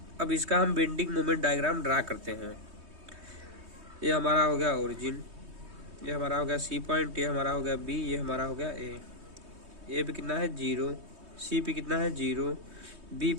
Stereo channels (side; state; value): left; late; 3.2 ms